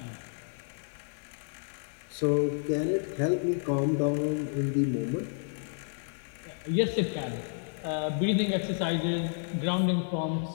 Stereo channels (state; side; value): silent; right; digital silence